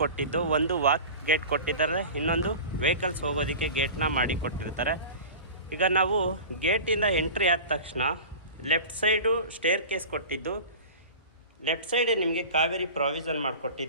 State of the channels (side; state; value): both; inverted; correlation -0.35